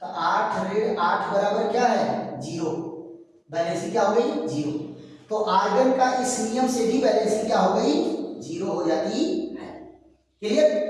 तो 8 ऋण 8 बराबर क्या है 0, वैलेंसी क्या हो गई 0। तो आर्गन का इस नियम से भी वैलेंसी क्या हो गई 0 हो जाती है। क्लियर।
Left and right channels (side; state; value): both; identical; correlation 1.00